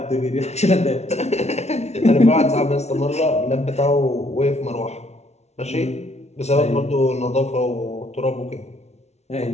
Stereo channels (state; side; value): late; right; 0.32 ms